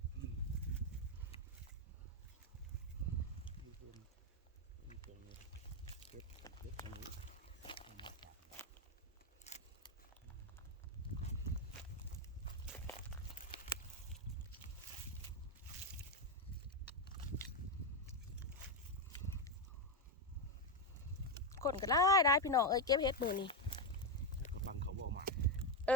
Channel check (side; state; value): both; normal; correlation 0.07